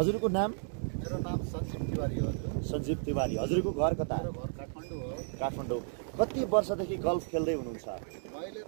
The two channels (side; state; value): left; silent; digital silence